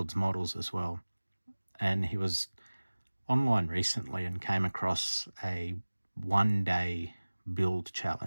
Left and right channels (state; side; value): inverted; both; correlation -1.00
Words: models as well. And he was online recently and came across a 1-day build